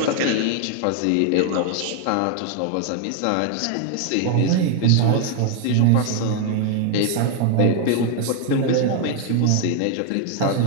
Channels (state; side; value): different; both; correlation 0.00